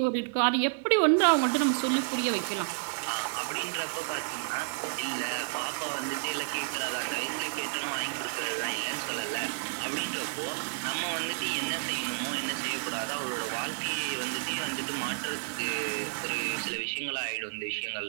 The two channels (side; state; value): left; silent; digital silence